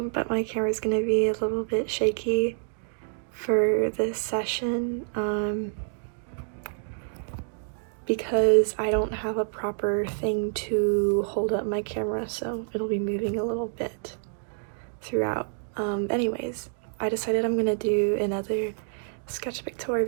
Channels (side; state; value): left; silent; digital silence